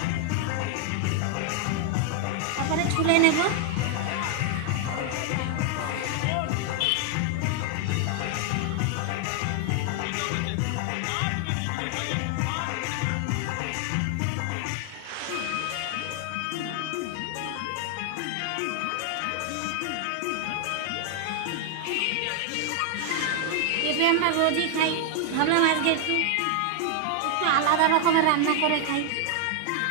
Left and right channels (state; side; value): different; both; correlation 0.00